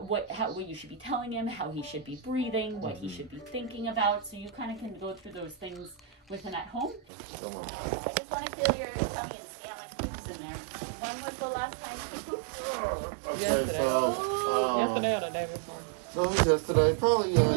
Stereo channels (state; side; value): drops out; left; at 7.0 s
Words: you should be telling him, how he should be breathing, what he should be thinking about. So you kind of can go through those things with him at home. Come on. I just want to feel your tummy and see how much poop's in there. When was the last time you pooped? Okay, Yesterday. so Yesterday or the day before? no, yesterday, probably